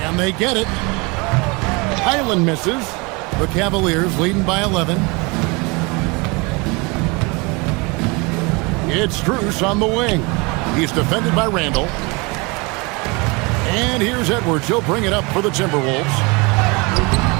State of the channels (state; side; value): quieter; left; 27.7 dB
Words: And they get it. Highland misses. The Cavaliers leading by 11. It's Strus on the wing. He's defended by Randall. And here's Edwards. He'll bring it up for the Timberwolves.